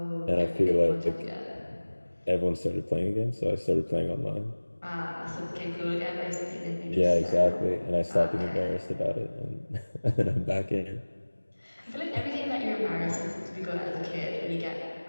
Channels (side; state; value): both; inverted; correlation -1.00